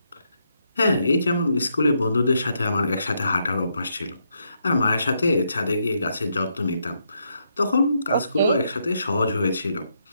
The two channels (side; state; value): both; inverted; correlation -0.78